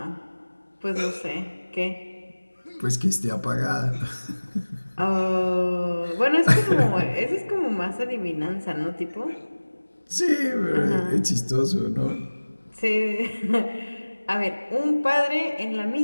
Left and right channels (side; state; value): both; inverted; correlation -1.00